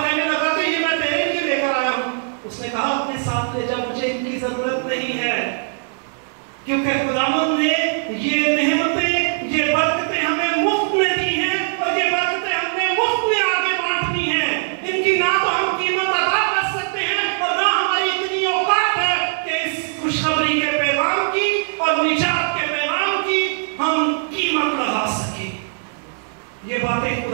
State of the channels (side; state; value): left; silent; digital silence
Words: लगा कि ये मैं तेरे लिए लेकर आया हूं। उसने कहा, अपने साथ ले जा, मुझे इनकी जरूरत नहीं है, क्योंकि खुदावंद ने ये नेमतें, ये बरकतें हमें मुफ्त में दी हैं और ये बरकतें हमने मुफ्त में आगे बांटनी हैं। इनकी ना तो हम कीमत अदा कर सकते हैं और ना हमारी इतनी औकात है कि इस खुशखबरी के पैगाम की और निजात के पैगाम की हम कीमत लगा सके। ये बातें